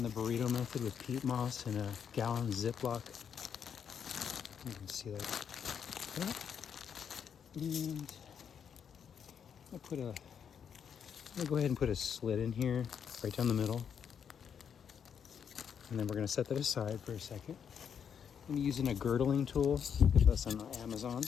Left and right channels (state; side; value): quieter; right; 7.6 dB